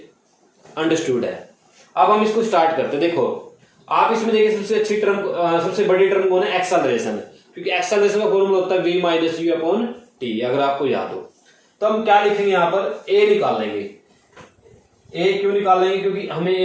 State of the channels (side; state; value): both; identical; correlation 1.00